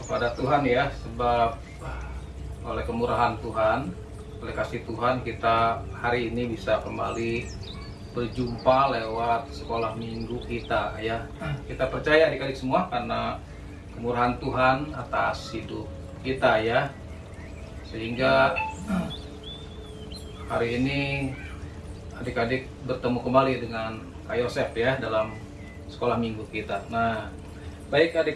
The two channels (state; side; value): identical; both; correlation 1.00